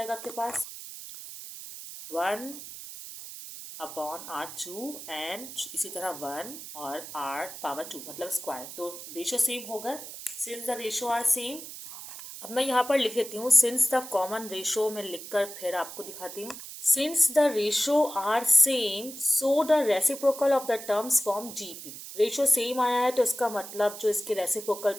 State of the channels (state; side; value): noise; right; hiss, 12 dB below the sound